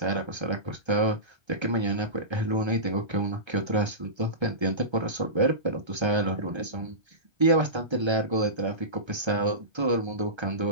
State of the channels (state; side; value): late; left; 1.3 ms